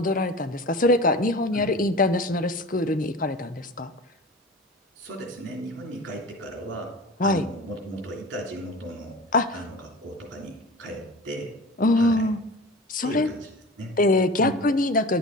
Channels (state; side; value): normal; both; correlation 0.35